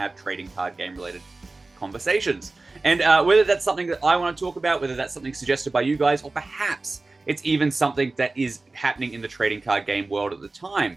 trading card game related conversations. And whether that's something that I want to talk about, whether that's something suggested by you guys, or perhaps it's even something that is happening in the trading card game world at the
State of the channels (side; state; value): left; quieter; 3.3 dB